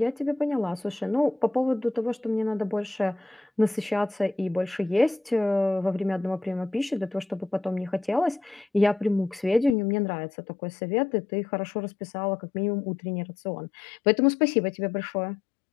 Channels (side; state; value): right; drops out; at 9.8 s